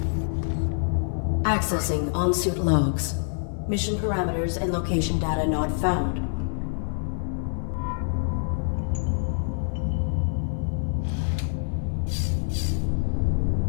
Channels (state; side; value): silent; right; 58 dB below the other